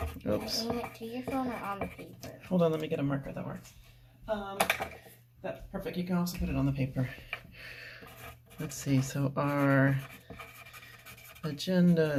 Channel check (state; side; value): identical; both; correlation 1.00